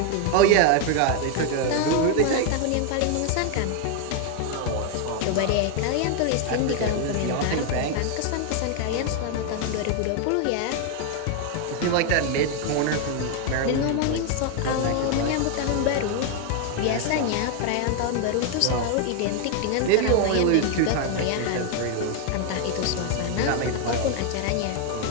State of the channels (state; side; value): different; both; correlation 0.01